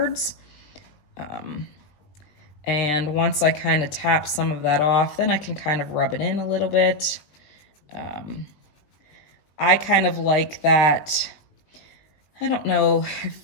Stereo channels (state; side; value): late; right; 20 ms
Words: And once I kind of tap some of that off, then I can kind of rub it in a little bit. I kind of like that, I don't know,